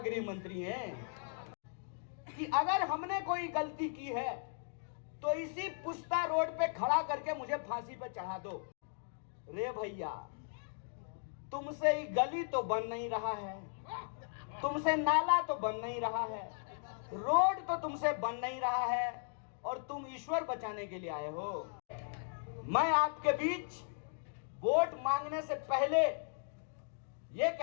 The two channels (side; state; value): right; silent; digital silence